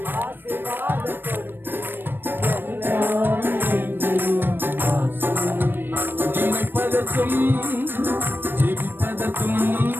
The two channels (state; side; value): late; left; 0.096 ms